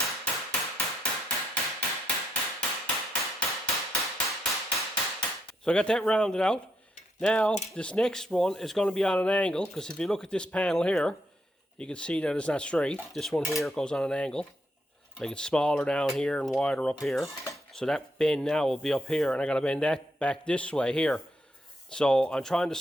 So I got that rounded out. Now this next one is going to be on an angle, because if you look at this panel here, you can see that it's not straight. This one here goes on an angle. Make it smaller down here and wider up here. So that bend now will be up here, and I got to bend that back this way here. So I'm trying to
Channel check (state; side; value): normal; both; correlation 0.78